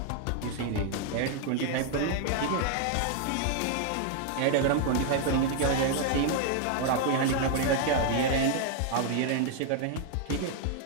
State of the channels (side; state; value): both; different; correlation 0.00